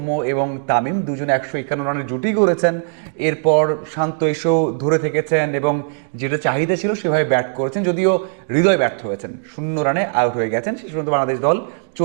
এবং তামিম দুজনে 151 রানের জুটি করেছেন, এরপর শান্ত এসেও ধরে থেকেছেন এবং যেটা চাহিদা ছিল সেভাবে ব্যাট করেছেন, যদিও হৃদয় ব্যর্থ হয়েছেন, 0 রানে আউট হয়ে গেছেন। শেষ পর্যন্ত বাংলাদেশ দল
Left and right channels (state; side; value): silent; left; digital silence